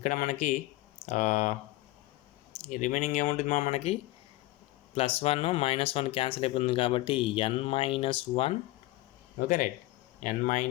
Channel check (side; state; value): right; quieter; 18.1 dB